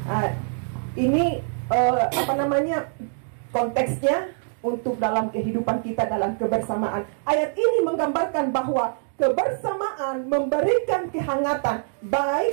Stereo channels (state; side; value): silent; left; digital silence